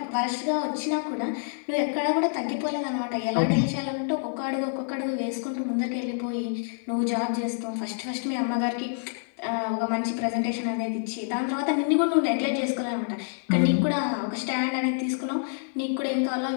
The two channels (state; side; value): silent; right; digital silence